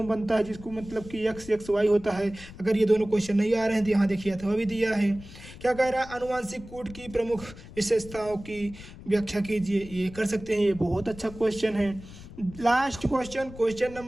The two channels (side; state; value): left; noise; rumble, 16 dB below the sound